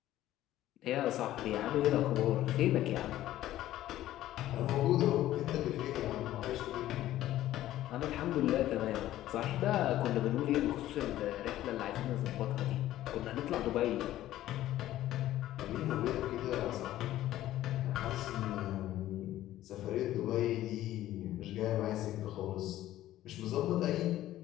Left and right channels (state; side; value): quieter; right; 14.0 dB